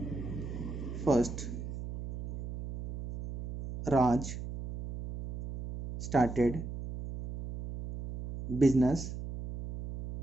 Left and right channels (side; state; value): right; noise; hum, 8 dB below the sound